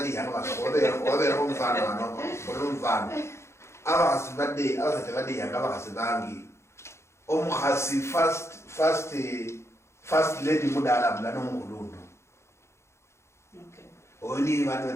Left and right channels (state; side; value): late; right; 0.13 ms